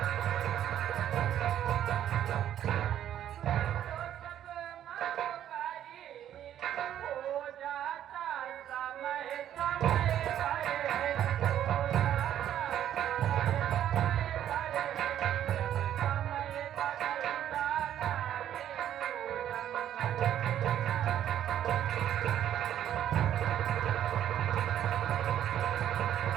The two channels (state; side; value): quieter; left; 10.9 dB